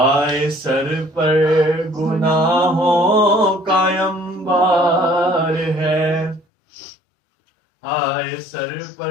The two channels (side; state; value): right; drops out; at 6.5 s